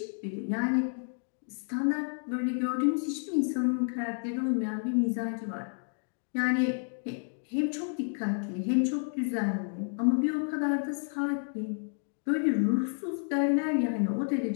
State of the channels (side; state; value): right; silent; 57 dB below the other